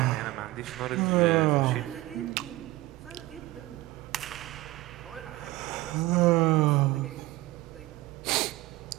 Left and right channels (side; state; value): left; quieter; 18.4 dB